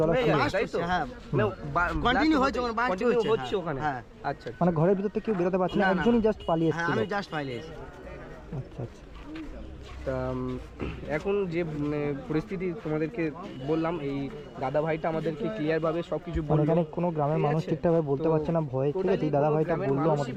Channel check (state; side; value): identical; both; correlation 1.00